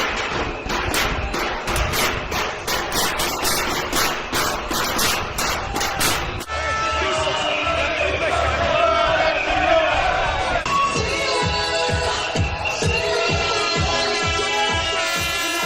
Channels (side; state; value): both; identical; correlation 1.00